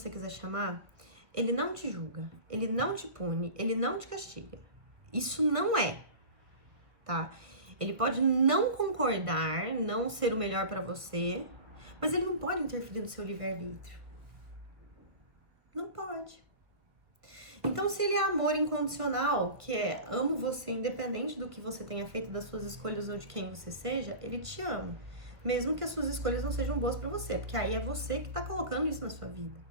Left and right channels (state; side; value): late; left; 1.3 ms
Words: quiser chamar, ele não te julga, ele não te pune, ele não te castiga. Isso não é, tá? Ele pode não concordar, não ser o melhor pra você, mas ele não pode interferir no seu livre-arbítrio. Não pode. Então, se ele é amor incondicional, que é amo você independente do que você tenha feito, das suas escolhas ou de quem você seja, ele te ama. Mesmo que as suas escolhas não sejam boas pra você, porque aí é você que tá colocando isso na sua vida,